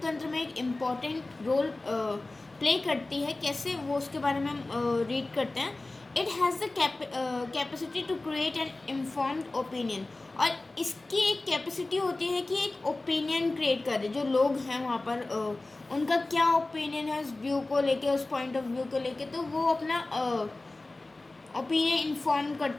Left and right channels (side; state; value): right; quieter; 3.0 dB